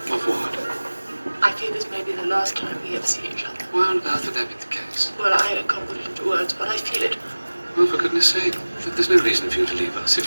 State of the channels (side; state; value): both; inverted; correlation -1.00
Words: Of what? I fear this may be the last time we ever see each other. Why on earth would that be the case? Well, I can't put it into words, but I feel it. Well, for goodness sake, there's no reason for you to leave us